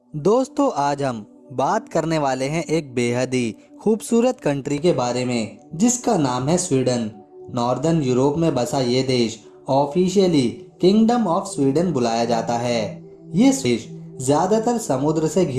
दोस्तों आज हम बात करने वाले हैं एक बेहद ही खूबसूरत कंट्री के बारे में जिसका नाम है स्वीडन। नॉर्दर्न यूरोप में बसा ये देश ऑफिशियली किंगडम ऑफ स्वीडन बुलाया जाता है। ये देश ज्यादातर समुद्र से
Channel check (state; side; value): identical; both; correlation 1.00